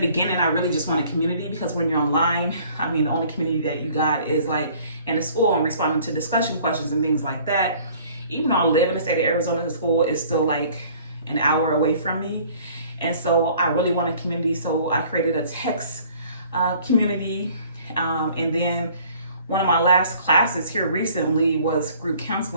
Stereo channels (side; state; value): both; inverted; correlation -0.54